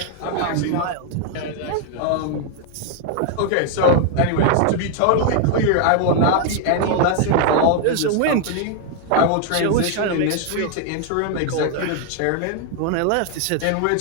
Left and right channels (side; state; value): both; different; correlation 0.00